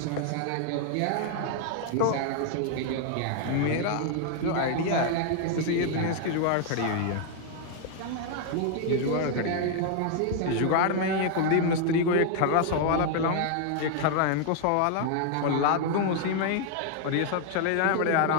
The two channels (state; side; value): different; both; correlation 0.00